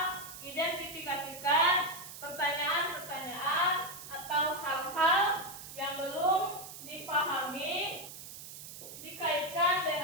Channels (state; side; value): noise; right; hiss, 12 dB below the sound